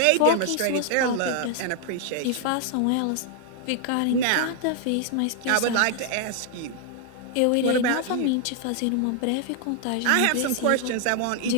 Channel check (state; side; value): different; both; correlation 0.00